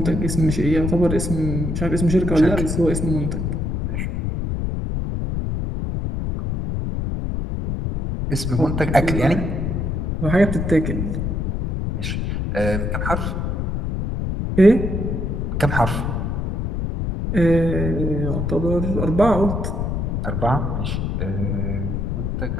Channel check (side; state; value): left; noise; rumble, 1 dB below the sound